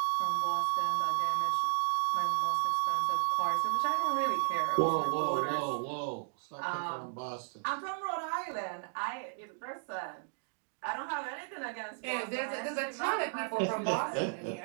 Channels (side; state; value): left; silent; digital silence